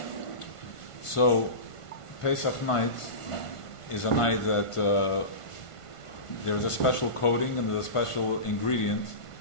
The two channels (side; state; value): right; late; 1.5 ms